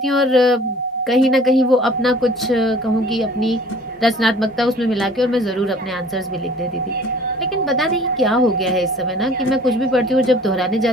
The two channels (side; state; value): both; normal; correlation 0.51